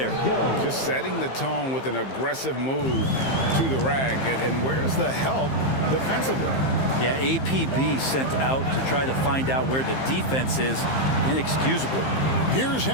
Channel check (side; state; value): right; late; 15 ms